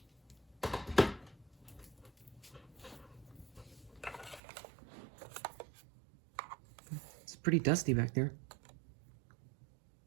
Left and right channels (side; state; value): left; drops out; at 4.4 s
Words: It's pretty dusty back there.